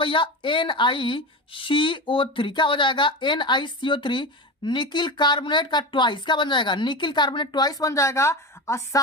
भैया, NiCO3। क्या हो जाएगा, NiCO3 निकिल कार्बोनेट का ट्वाइस। क्या बन जाएगा, निकिल कार्बोनेट ट्वाइस बन जाएगा। और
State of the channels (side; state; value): both; normal; correlation 0.23